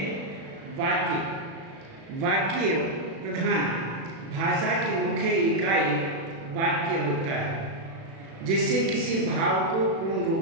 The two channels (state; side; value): late; left; 36 ms